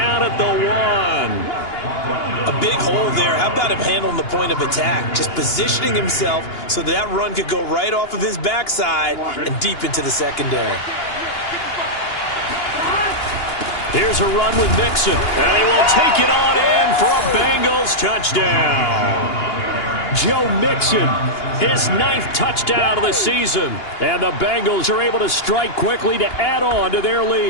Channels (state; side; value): late; right; 2.8 ms